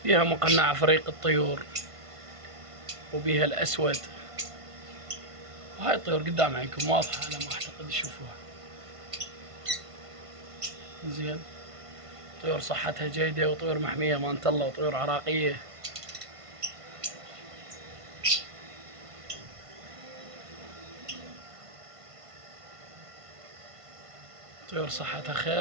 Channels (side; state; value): left; late; 1.5 ms